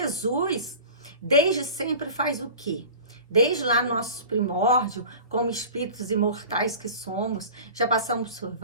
desde sempre, faz o quê? Desde lá nossos primórdios, como espíritos imortais que somos, já passamos por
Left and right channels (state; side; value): inverted; both; correlation -0.38